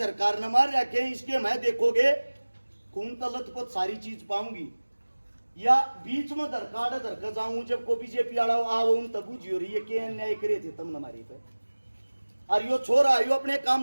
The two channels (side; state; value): both; inverted; correlation -1.00